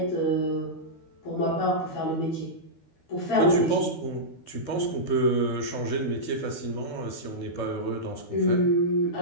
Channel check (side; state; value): right; late; 12 ms